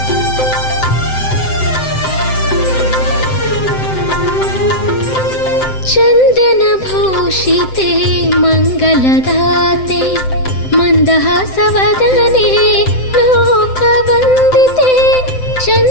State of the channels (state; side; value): late; right; 7.8 ms